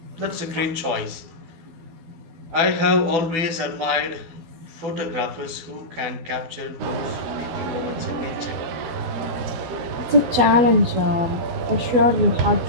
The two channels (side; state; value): left; late; 12 ms